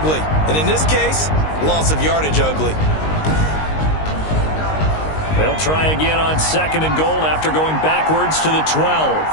And in this case, loss of yardage ugly. They'll try again on 2nd and goal after going backwards to the 12.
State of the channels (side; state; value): right; late; 19 ms